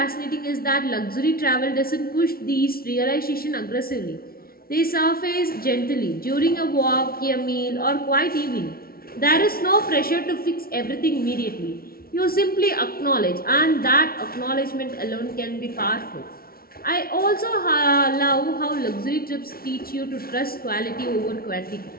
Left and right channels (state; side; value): late; right; 0.43 ms